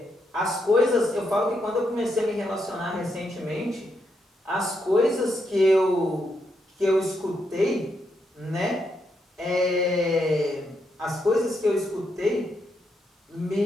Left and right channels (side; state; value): both; normal; correlation 0.80